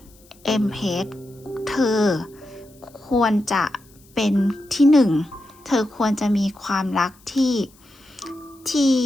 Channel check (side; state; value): left; noise; hiss, 29 dB below the sound